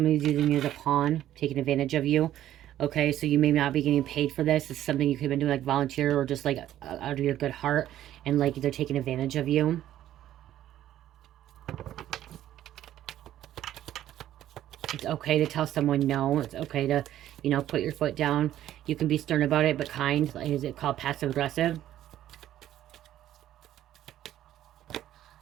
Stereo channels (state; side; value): quieter; left; 12.4 dB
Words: using you as a pawn, taking advantage of you. Okay, so you may not be getting paid for this. It's something you could have been doing like volunteer or just like out of your good heart. And like they're taking advantage of you. It's okay to tell someone no. It's okay to, you know, put your foot down. You can be stern about it, but kind. Is it called passive aggressive?